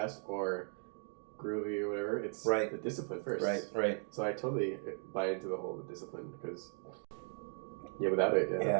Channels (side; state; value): left; silent; 53 dB below the other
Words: or groovy or whatever, it's the discipline first. Right. So I totally buy into the whole discipline because, without it,